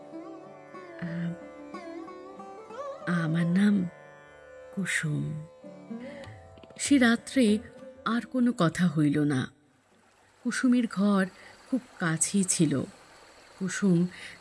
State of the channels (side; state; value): both; identical; correlation 1.00